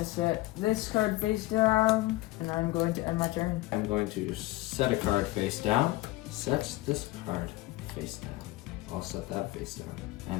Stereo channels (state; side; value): quieter; right; 18.7 dB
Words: set this card face down, and I'm going to end my turn. I'm going to set a card face down, set this card face down. I'll set that face down,